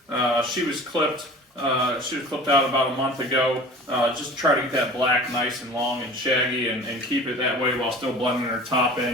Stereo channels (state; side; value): normal; both; correlation 0.41